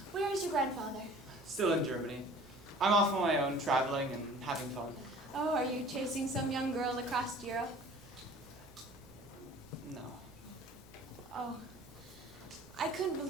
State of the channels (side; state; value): both; normal; correlation 0.47